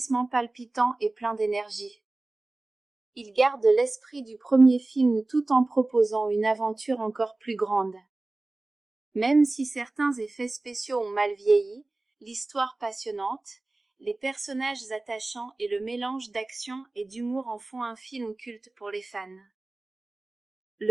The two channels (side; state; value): left; quieter; 3.0 dB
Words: palpitant et plein d'énergie. Il garde l'esprit du premier film tout en proposant une aventure encore plus grande. Même si certains effets spéciaux ont mal vieilli, l'histoire passionnante, les personnages attachants et le mélange d'action et d'humour en font un film culte pour les fans.